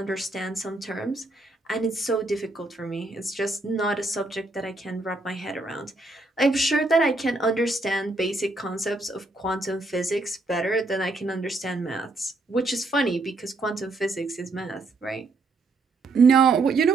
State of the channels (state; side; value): quieter; left; 3.1 dB